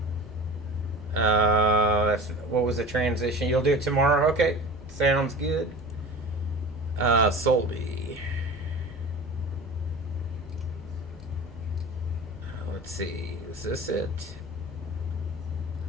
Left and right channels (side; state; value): both; normal; correlation 0.35